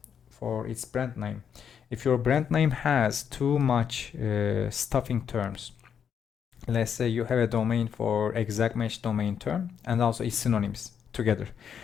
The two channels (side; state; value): right; quieter; 7.8 dB